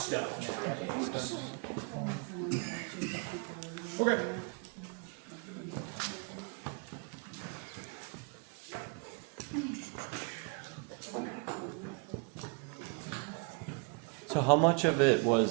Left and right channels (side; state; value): left; quieter; 34.7 dB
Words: nowadays. Okay. how much of it